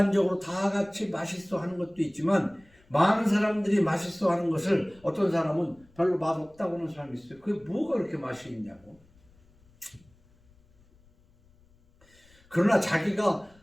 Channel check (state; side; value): noise; left; rumble, 30 dB below the sound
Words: 다 같이 맛있어 하는 것도 있지만 많은 사람들이 맛있어 하는 것을 어떤 사람은 별로 맛없다고 하는 사람이 있어요. 그게 뭐가 그렇게 맛이 있냐고. 그러나 자기가